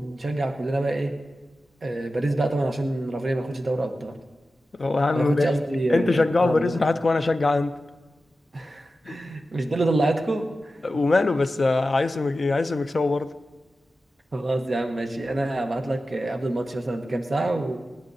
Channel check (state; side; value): normal; both; correlation 0.93